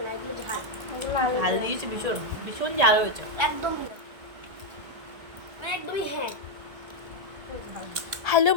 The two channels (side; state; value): left; late; 1.8 ms